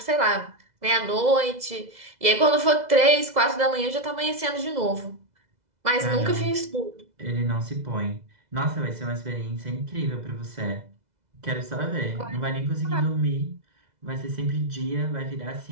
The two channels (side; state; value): left; late; 2.0 ms